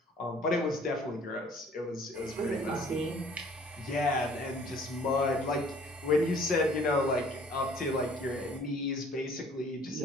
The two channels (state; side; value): normal; both; correlation 0.55